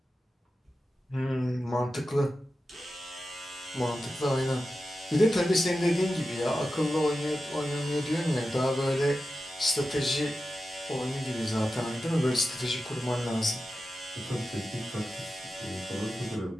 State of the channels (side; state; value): both; normal; correlation 0.92